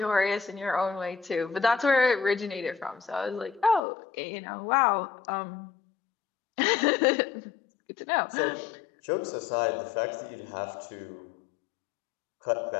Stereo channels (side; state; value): right; drops out; at 3.8 s